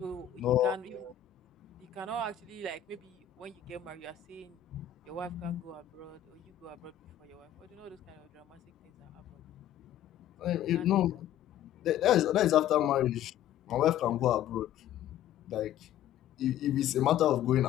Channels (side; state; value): right; quieter; 10.9 dB